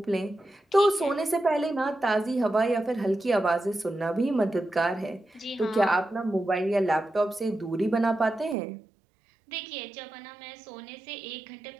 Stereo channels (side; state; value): left; drops out; at 8.6 s